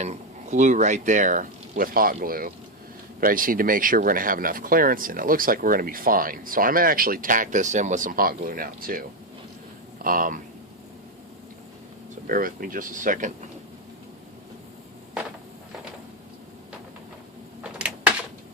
glue right there with hot glue, but I just need to make sure we're going to have enough clearance, and it looks like we're going to be fine. So I'm going to actually tack this in with some hot glue now too. So bear with me just a second.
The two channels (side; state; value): both; normal; correlation 0.06